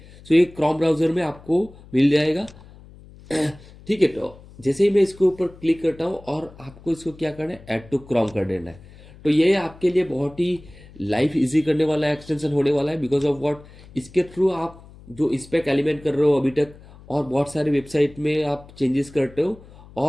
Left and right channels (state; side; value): noise; left; hum, 21 dB below the sound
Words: सो ये क्रोम ब्राउज़र में आपको मिल जाएगा। ठीक है, तो जैसे ही मैं इसके ऊपर क्लिक करता हूँ और आपको इसको क्या करना है, ऐड टू क्रोम कर देना है। तो ये आपके लिए बहुत ही लाइफ इजी करने वाला एक्सटेंशन होने वाला है। बिकॉज ऑफ व्हाट, इसके थ्रू आप जो स्पेक एलिमेंट कर रहे हो अभी तक, और बहुत सारे वेबसाइट में आप चेंजेस करते हो